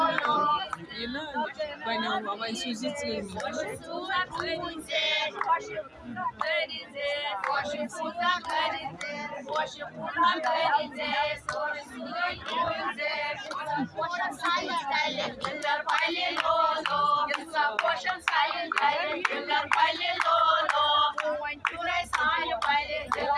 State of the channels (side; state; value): both; identical; correlation 1.00